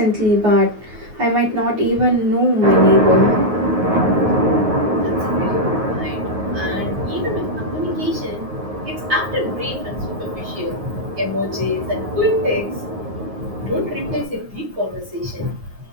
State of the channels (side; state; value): left; late; 9.5 ms